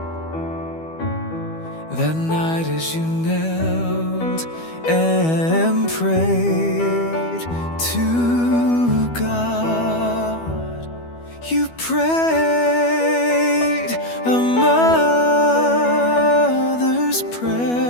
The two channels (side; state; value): right; late; 12 ms